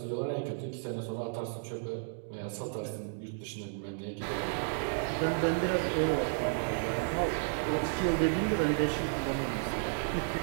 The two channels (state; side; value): silent; left; digital silence